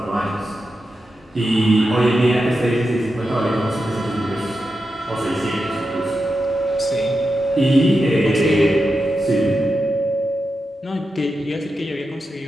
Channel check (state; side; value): normal; both; correlation 0.89